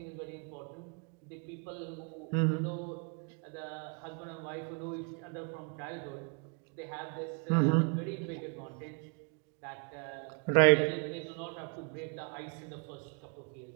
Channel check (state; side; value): quieter; left; 37.4 dB